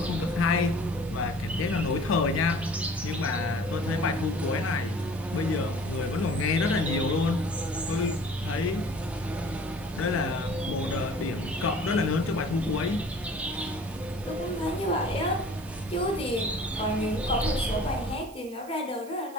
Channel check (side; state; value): right; noise; hiss, 22 dB below the sound